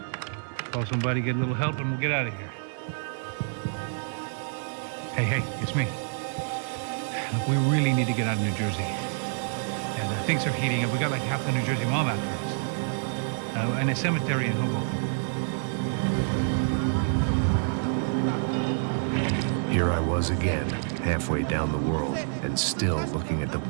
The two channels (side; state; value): left; silent; digital silence